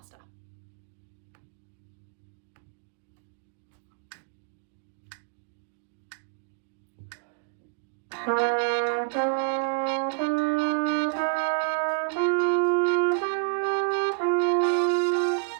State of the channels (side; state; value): left; silent; 59 dB below the other